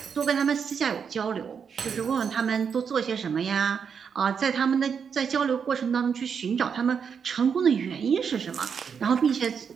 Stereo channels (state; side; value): quieter; left; 6.7 dB